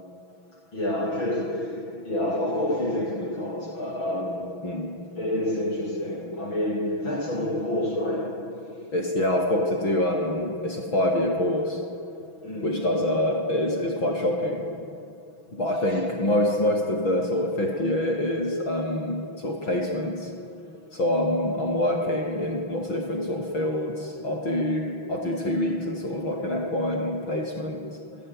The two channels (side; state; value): right; late; 6.1 ms